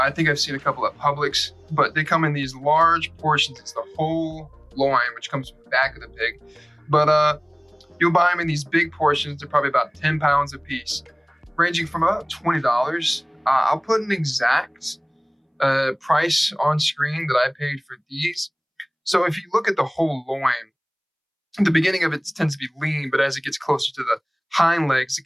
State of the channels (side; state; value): both; identical; correlation 1.00